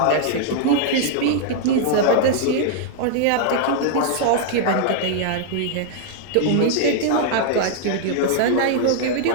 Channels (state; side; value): different; both; correlation -0.01